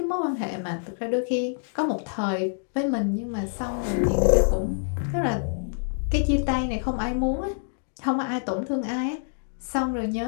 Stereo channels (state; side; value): silent; right; digital silence